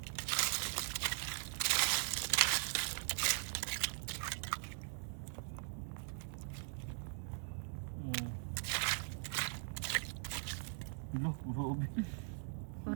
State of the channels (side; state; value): left; silent; 51 dB below the other